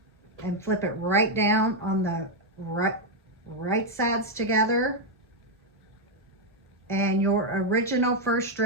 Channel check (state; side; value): normal; both; correlation 0.01